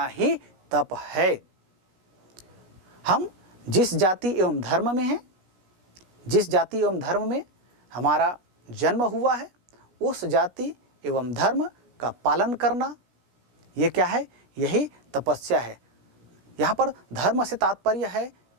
ही तप है। हम जिस जाति एवं धर्म में हैं, जिस जाति एवं धर्म में हमारा जन्म हुआ है, उस जाति एवं धर्म का पालन करना, ये क्या है? यही तपस्या है। यहाँ पर धर्म से तात्पर्य है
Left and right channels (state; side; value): late; left; 16 ms